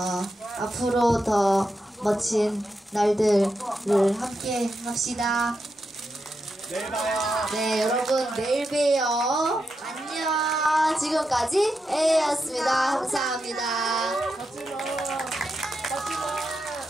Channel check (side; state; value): both; normal; correlation 0.86